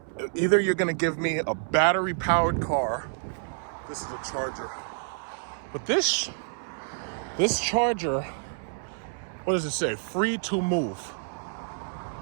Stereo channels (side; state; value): left; silent; 59 dB below the other